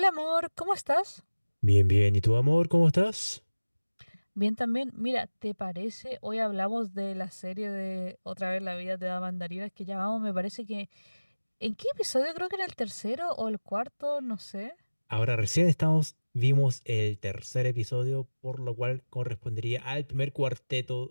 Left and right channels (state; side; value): inverted; both; correlation -1.00